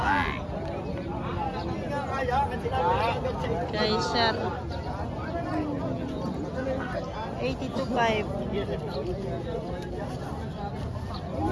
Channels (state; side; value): identical; both; correlation 1.00